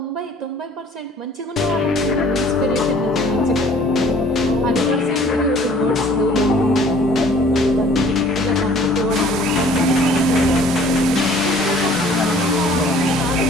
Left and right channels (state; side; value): normal; both; correlation 0.53